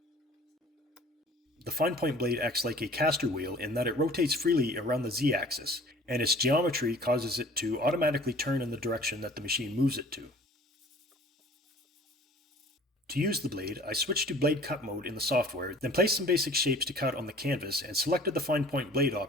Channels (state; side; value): normal; both; correlation 0.49